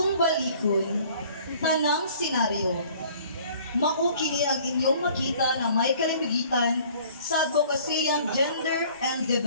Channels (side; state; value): both; inverted; correlation -0.53